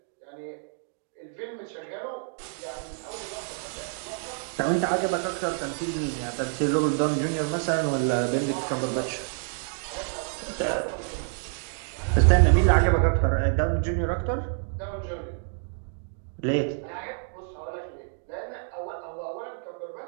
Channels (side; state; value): left; silent; 60 dB below the other